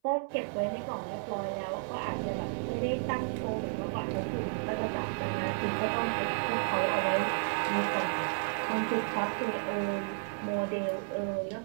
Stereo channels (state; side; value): silent; left; 56 dB below the other